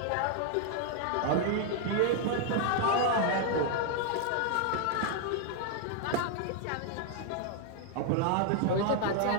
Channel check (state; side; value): different; both; correlation 0.00